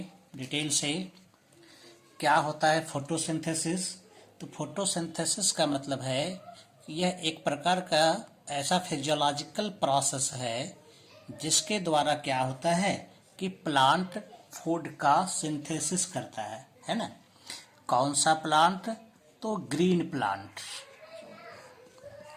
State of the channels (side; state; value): both; identical; correlation 1.00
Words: डिटेल से। क्या होता है फोटोसिंथेसिस? तो फोटोसिंथेसिस का मतलब है कि यह एक प्रकार का ऐसा फिजियोलॉजिकल प्रोसेस है जिसके द्वारा क्या होता है कि प्लांट फूड का सिंथेसिस करता है ना। कौन सा प्लांट? तो ग्रीन प्लांट।